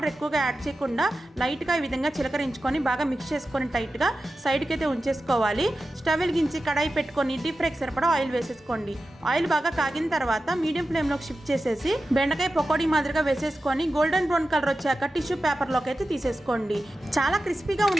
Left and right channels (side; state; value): both; normal; correlation 0.93